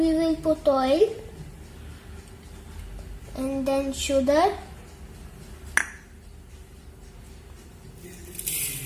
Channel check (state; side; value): identical; both; correlation 1.00